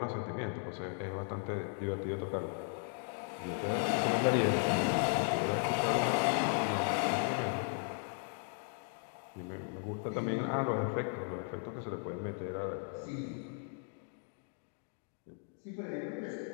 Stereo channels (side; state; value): right; silent; 54 dB below the other